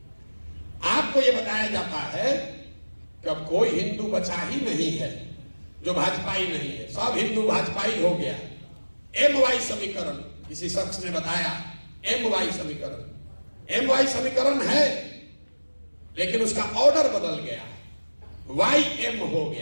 आपको यह बताया जाता है कि अब कोई हिंदू बचा ही नहीं है जो भाजपाई नहीं है, सब हिंदू भाजपाई हो गया। MY समीकरण किसी शख्स ने बताया, MY समीकरण है, लेकिन उसका ऑर्डर बदल गया, YM हो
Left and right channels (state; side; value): inverted; both; correlation -1.00